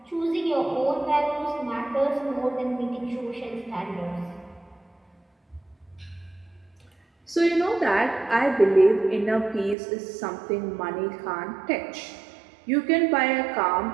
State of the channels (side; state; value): left; drops out; at 9.8 s